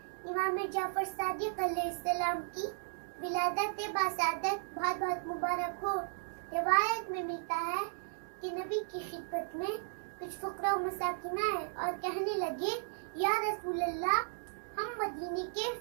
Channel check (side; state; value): left; silent; digital silence